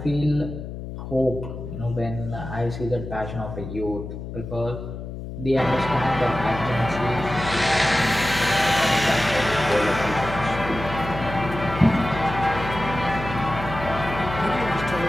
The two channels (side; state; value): left; noise; hum, 9 dB below the sound